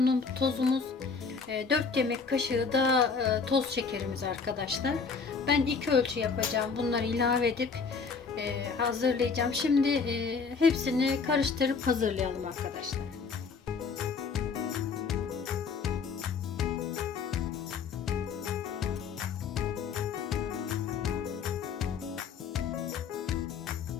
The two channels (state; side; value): quieter; right; 5.3 dB